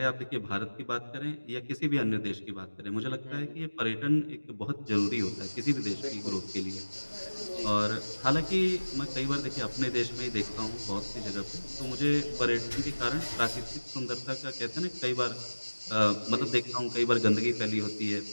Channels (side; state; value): both; inverted; correlation -1.00